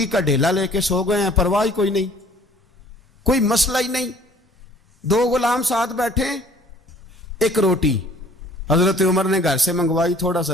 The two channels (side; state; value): both; normal; correlation 0.54